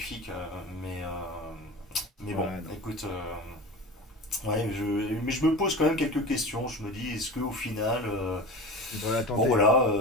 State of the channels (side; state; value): both; normal; correlation 0.32